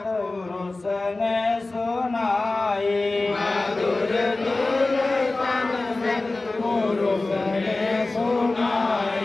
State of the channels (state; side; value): quieter; right; 3.2 dB